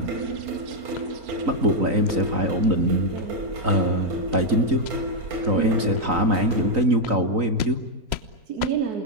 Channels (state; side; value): late; left; 3.9 ms